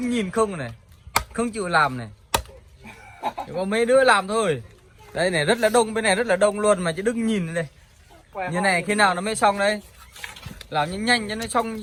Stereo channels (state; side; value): identical; both; correlation 1.00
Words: nhìn không này, không chịu làm này. Chỉ có mấy đứa làm thôi. Đây này rất là đông, bên này rất là đông luôn mà chỉ đứng nhìn đây. Như này khi nào nó mới xong đây? Làm nhanh nhanh cho nó xong